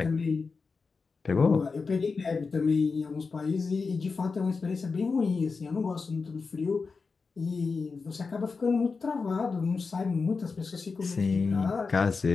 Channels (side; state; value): right; quieter; 4.6 dB